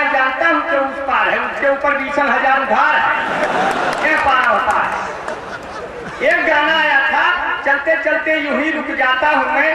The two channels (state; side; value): identical; both; correlation 1.00